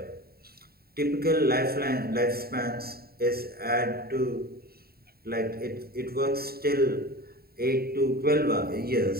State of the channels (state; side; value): late; left; 0.45 ms